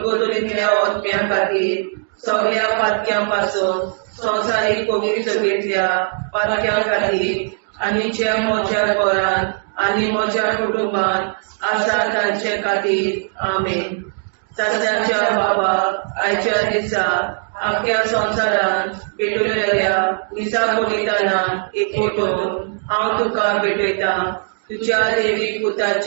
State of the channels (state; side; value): silent; left; 62 dB below the other